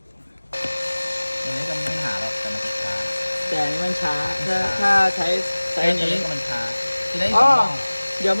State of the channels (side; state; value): both; inverted; correlation -1.00